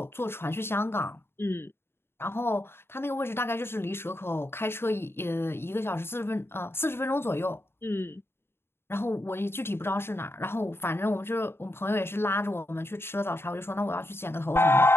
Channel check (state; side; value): late; right; 0.11 ms